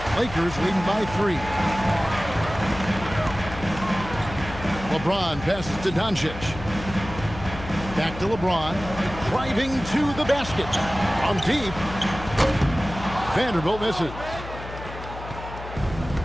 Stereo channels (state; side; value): noise; left; hum, 11 dB below the sound